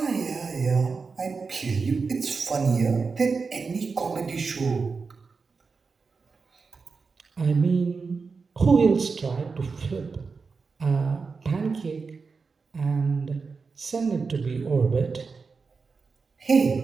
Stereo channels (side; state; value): left; quieter; 4.8 dB